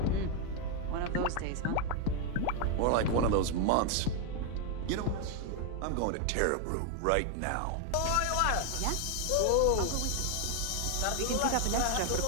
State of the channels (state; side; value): different; both; correlation 0.01